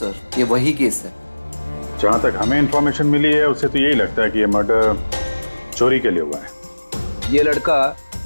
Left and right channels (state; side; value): inverted; both; correlation -1.00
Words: ये वही केस है। जहां तक हमें इंफॉर्मेशन मिली है उससे तो यही लगता है कि ये मर्डर चोरी के लिए हुआ है। ये लड़का